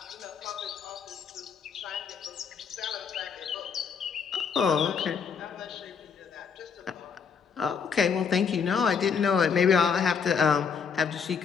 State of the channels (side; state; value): right; quieter; 6.3 dB